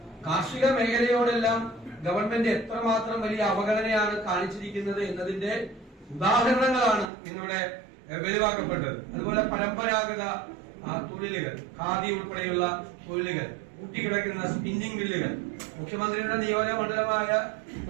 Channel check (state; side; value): drops out; left; at 7.1 s